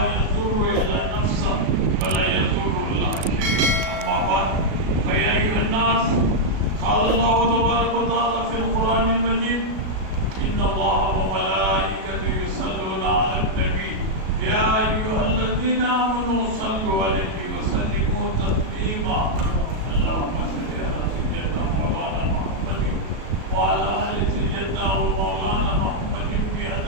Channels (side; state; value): left; late; 37 ms